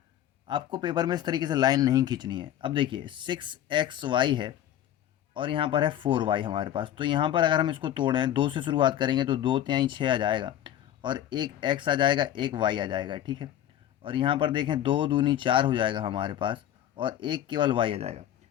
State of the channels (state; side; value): quieter; right; 11.5 dB